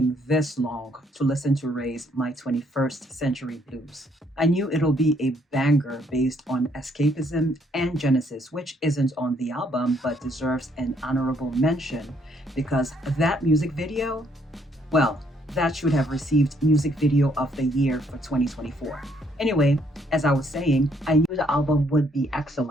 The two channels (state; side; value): normal; both; correlation 0.68